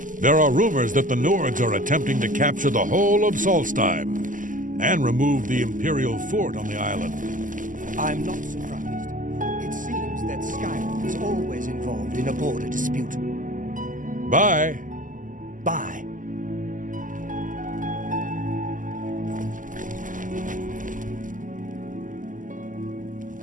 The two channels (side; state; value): left; late; 0.38 ms